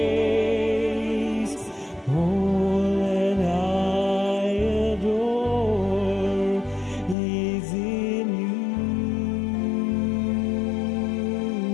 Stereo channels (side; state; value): right; drops out; at 7.2 s